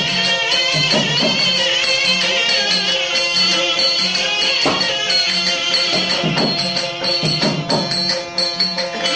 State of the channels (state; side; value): identical; both; correlation 1.00